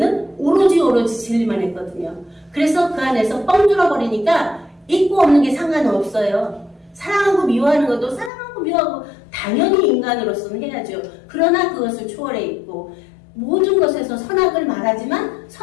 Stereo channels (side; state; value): right; drops out; at 8.3 s